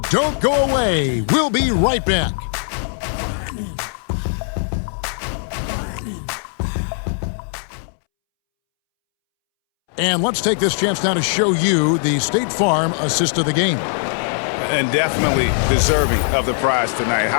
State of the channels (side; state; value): right; silent; 66 dB below the other